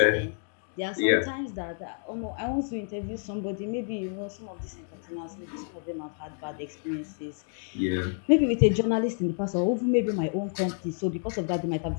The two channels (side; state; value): right; silent; 59 dB below the other